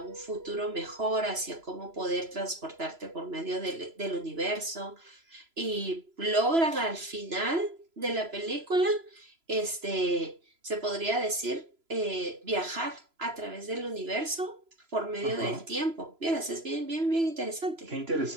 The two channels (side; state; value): left; late; 3.0 ms